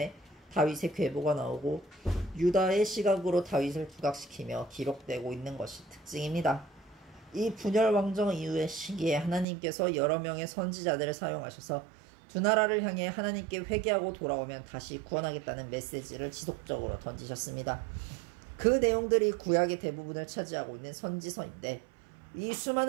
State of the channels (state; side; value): drops out; left; at 9.5 s